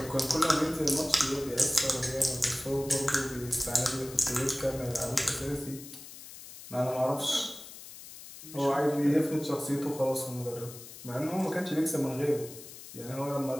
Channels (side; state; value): left; noise; hiss, 15 dB below the sound